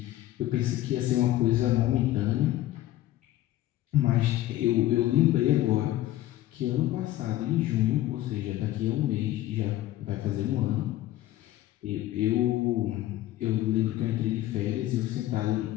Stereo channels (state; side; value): quieter; right; 14.6 dB